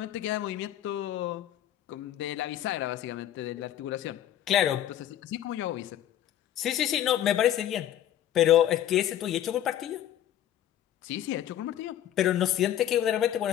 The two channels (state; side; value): quieter; right; 11.6 dB